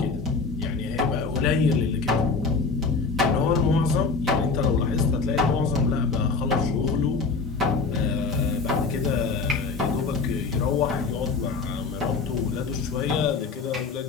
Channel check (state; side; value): quieter; right; 4.4 dB